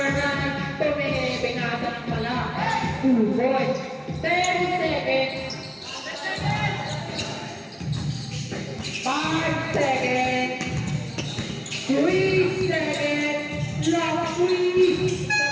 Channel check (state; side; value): identical; both; correlation 1.00